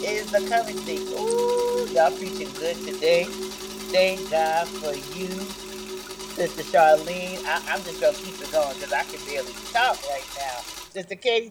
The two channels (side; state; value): both; identical; correlation 1.00